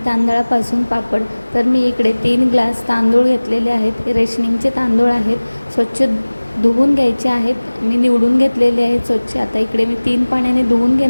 तांदळापासून पापड. तर मी इकडे 3 ग्लास तांदूळ घेतलेले आहेत. रेशनिंगचे तांदूळ आहेत. स्वच्छ धुवून घ्यायचे आहेत. मी निवडून घेतलेले आहेत स्वच्छ. आता इकडे मी 3 पाण्याने धुवून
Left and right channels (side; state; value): both; inverted; correlation -1.00